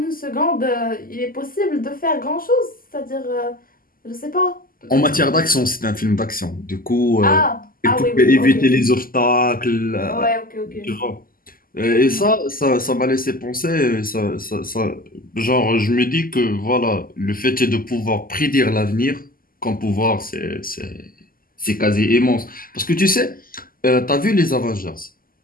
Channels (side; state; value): right; late; 0.42 ms